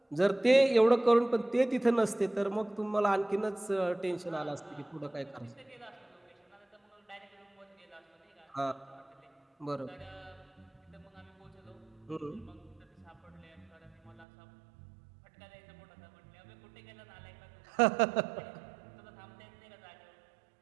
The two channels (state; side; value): drops out; left; at 14.2 s